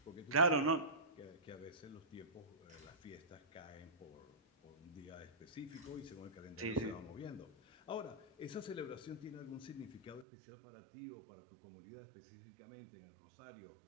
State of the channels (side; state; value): left; drops out; at 10.2 s